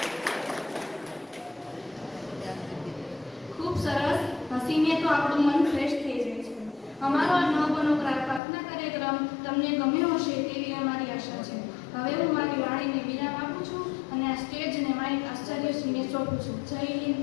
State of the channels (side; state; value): right; drops out; at 8.4 s